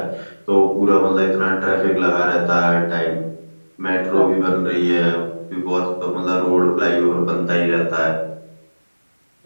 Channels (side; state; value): both; inverted; correlation -1.00